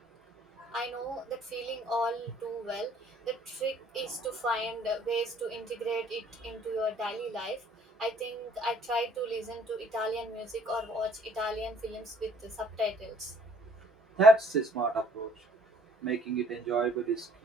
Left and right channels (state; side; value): normal; both; correlation 0.60